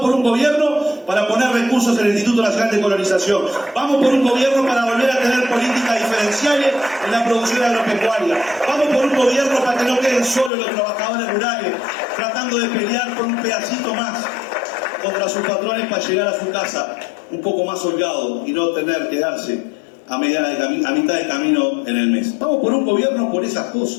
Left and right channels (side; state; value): right; drops out; at 10.5 s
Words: por un gobierno para poner recursos en el Instituto Nacional de Colonización. Vamos por un gobierno para volver a tener políticas diferenciales en la producción agropecuaria. Vamos por un gobierno para que no queden solos los trabajadores rurales tratando de pelear por un pedacito más contra sus patrones para llegar a su casa un poco más holgado y no tener que darse a mitad de camino en el mes. Vamos por un gobierno por esas